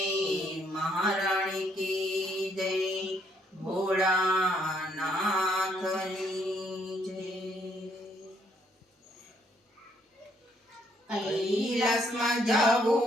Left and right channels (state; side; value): normal; both; correlation 0.69